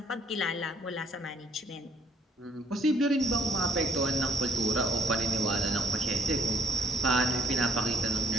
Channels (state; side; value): normal; both; correlation 0.64